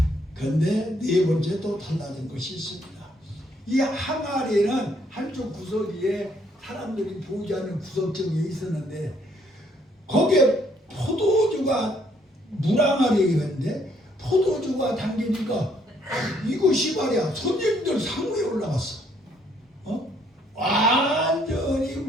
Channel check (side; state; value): both; normal; correlation 0.68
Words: 그런데 네 번째 또 달라진 것이 있습니다. 이 항아리는 한쪽 구석에 사람들이 보지 않는 구석정에 있었는데 거기에 포도주가 물항아리였는데 포도주가 담기니까 이것이 말이야 손님들 상위에 올라갔어. 완전히